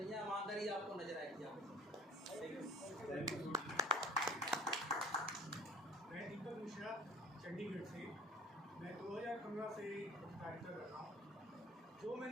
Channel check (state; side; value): normal; both; correlation 0.48